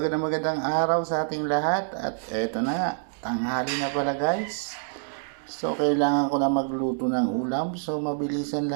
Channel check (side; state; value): left; silent; digital silence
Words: araw sa ating lahat. At eto na nga, tanghali na pala guys. So kailangan ko na magluto ng ulam. So mabilisan